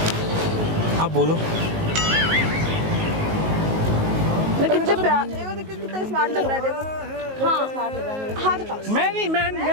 आप बोलो। कितने प्यार देखो कितना स्मार्ट लग रहा है देखो। हाँ स्मार्ट लग रहा है। हाथ हटाओ। मैं नहीं मैं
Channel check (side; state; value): left; late; 19 ms